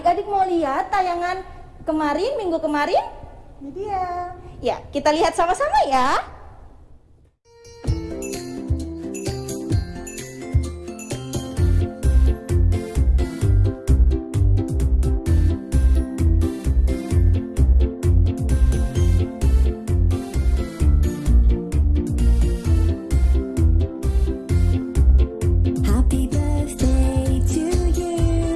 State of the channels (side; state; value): both; identical; correlation 1.00